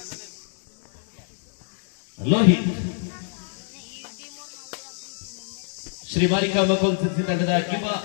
ಲೋಹಿತ್ ಶ್ರೀ ಮಾರಿಕಾ ಮಕೋಲ್ ಸಿರ್ಸಿ ತಂಡದ ಯುವ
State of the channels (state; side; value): silent; right; digital silence